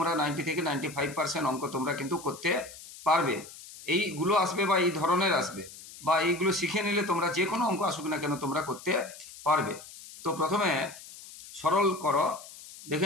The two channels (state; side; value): noise; left; hiss, 16 dB below the sound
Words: 90 থেকে 95% অঙ্ক তোমরা কিন্তু করতে পারবে। এইগুলো আসবে বা এই ধরনের আসবে বা এইগুলো শিখে নিলে তোমরা যে কোনো অঙ্ক আসুক না কেন তোমরা করতে পারবে। তো প্রথমে সরল করো,